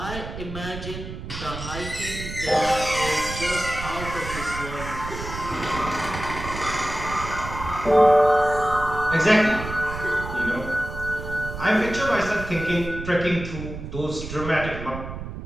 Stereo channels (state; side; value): noise; right; rumble, 9 dB below the sound